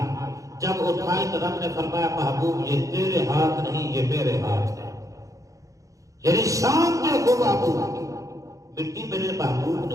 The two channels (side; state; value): left; late; 0.16 ms